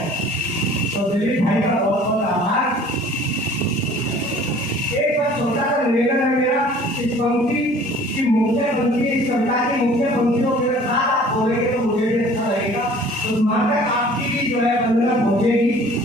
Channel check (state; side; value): normal; both; correlation 0.50